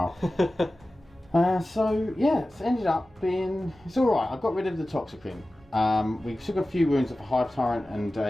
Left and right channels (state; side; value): normal; both; correlation 0.96